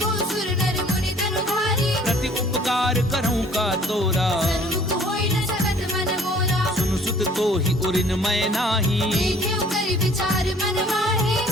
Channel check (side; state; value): both; normal; correlation 0.54